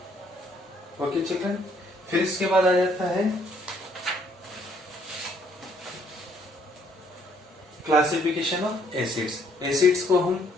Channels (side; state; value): both; normal; correlation 0.66